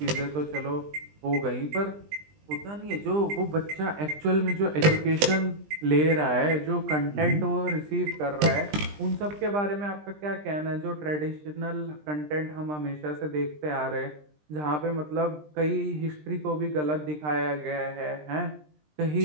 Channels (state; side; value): late; left; 20 ms